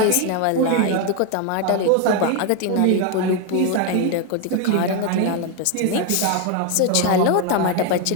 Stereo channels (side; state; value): both; different; correlation 0.01